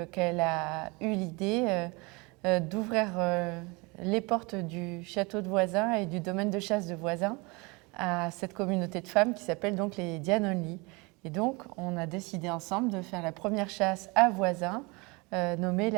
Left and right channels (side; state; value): left; quieter; 27.1 dB